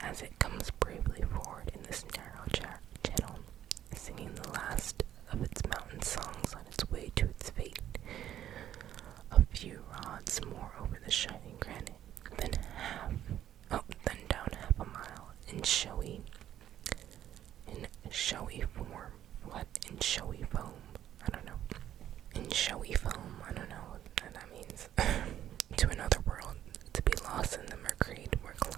as it comes bravely forward in this narrow channel, singing the last of its mountain songs on its way to its fate. A few rods more over the shining granite, then down half a mile in showy form. What? In showy foam? I don't know. In showy foam? I don't know what that means.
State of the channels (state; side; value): quieter; left; 11.3 dB